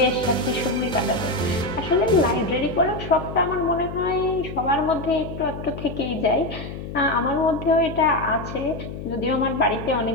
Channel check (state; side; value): noise; left; hum, 9 dB below the sound